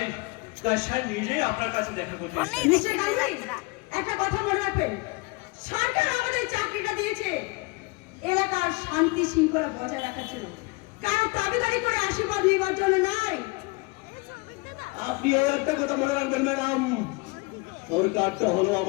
স্যার নিজেই আপনার কাছে দেখা করতে এসেছেন। মিস্টার গাঙ্গুলি, একটা কথা মনে রাখবেন, সরকার আমাদের চাকরিটা দিয়েছে এলাকার শান্তি শৃঙ্খলা বজায় রাখার জন্য, কারো দাবিদারি করে আশীর্বাদ নেবার জন্য নয়। আপনি একটা কথা মনে রাখবেন ম্যাডাম, সরকারটা হলো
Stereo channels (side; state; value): right; quieter; 25.4 dB